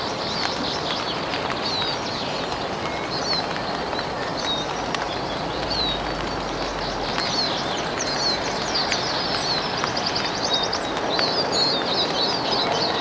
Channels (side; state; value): both; identical; correlation 1.00